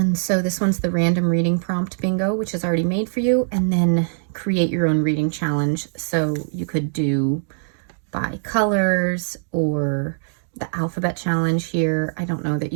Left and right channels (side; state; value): left; silent; digital silence